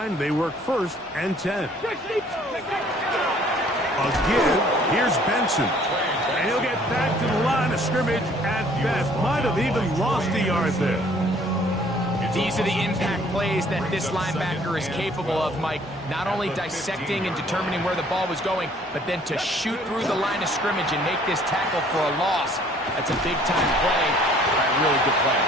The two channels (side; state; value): both; normal; correlation 0.58